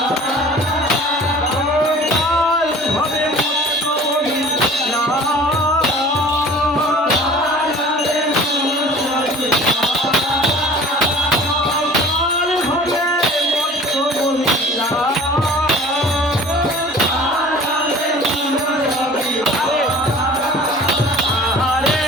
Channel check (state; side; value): normal; both; correlation 0.45